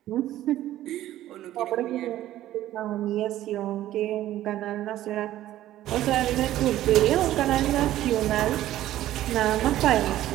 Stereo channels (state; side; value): quieter; left; 13.7 dB